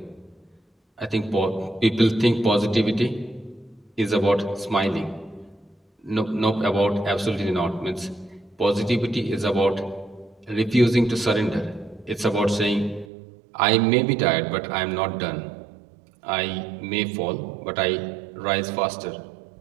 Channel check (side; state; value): left; drops out; at 13.1 s